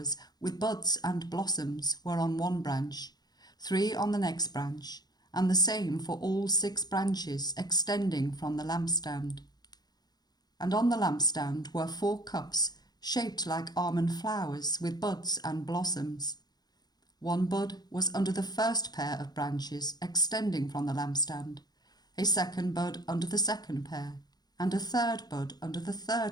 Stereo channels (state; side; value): late; right; 0.19 ms